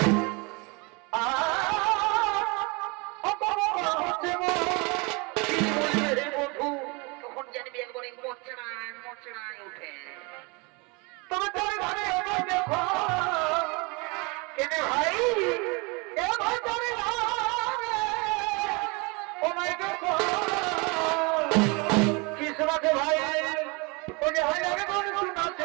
তখন জানবি একবারে মোচড়ায় মোচড়ায় উঠে। তবে তোর ঘরে দেখো কেন ভাই, এ ভাই তোর ও মাই গড, কি শোনাছে ভাই? ও যে হয় আগে কোন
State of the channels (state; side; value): quieter; left; 28.9 dB